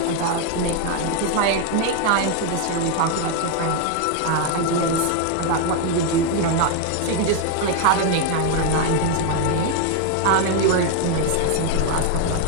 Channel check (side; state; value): both; different; correlation 0.01